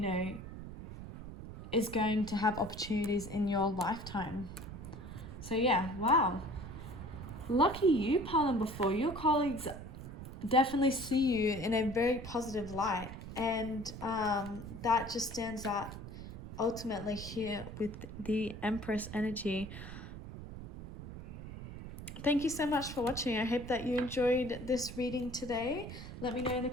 is going to have opportunities in your lifetime. So yeah, wow. Lucky you, pile number 4. Your colleagues definitely see you in a very positive light, and that just stands out ultimately here with the Empress energy. Thank you so much for watching. I hope that you enjoyed this reading today. Let me know in the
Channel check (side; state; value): right; noise; rumble, 11 dB below the sound